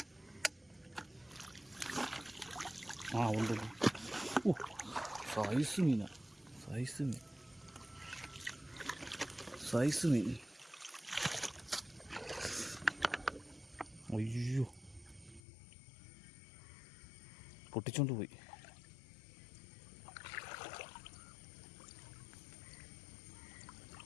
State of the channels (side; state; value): right; drops out; at 15.4 s